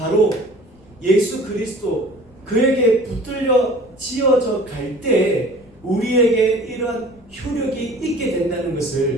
예수 그리스도 그에게 붙들려 지어져 갈 때 우리에게 이러한 효력이 있게 된다는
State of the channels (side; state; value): left; noise; rumble, 28 dB below the sound